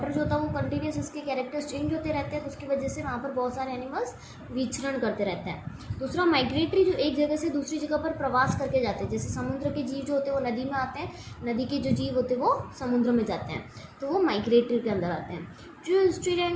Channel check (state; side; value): identical; both; correlation 1.00